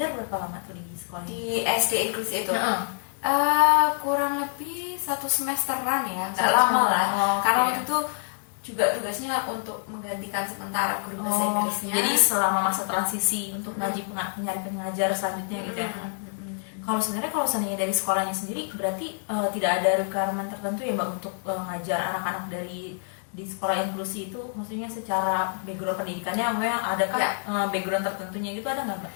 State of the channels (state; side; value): silent; right; 60 dB below the other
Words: berapa lama tuh di sekolah di SD inklusi itu? Kurang lebih 1 semesteran ya, nggak lama lah. Karena waktu itu juga tugasnya untuk menggantikan sementara guru bahasa Inggrisnya. Jadi selama masa transisi untuk nyari pengajar selanjutnya gitu ya. Kalau sebenarnya dari sekolahnya sendiri berarti tidak ada requirement tertentu ya Mbak untuk ngajar anak-anak dari di sekolah inklusi itu, maksudnya secara background pendidikannya adakah background tertentunya gitu, ada nggak Mbak?